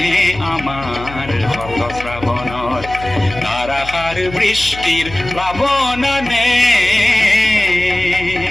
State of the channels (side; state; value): left; noise; hum, 14 dB below the sound